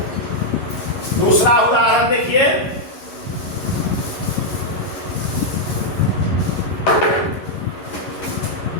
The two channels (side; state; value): right; late; 11 ms